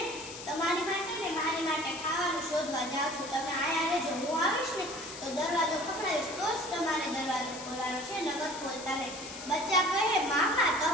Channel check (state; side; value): noise; left; hiss, 11 dB below the sound